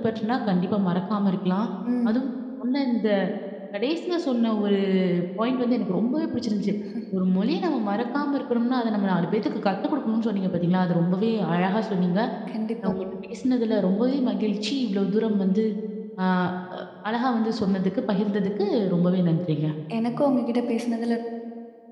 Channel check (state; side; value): identical; both; correlation 1.00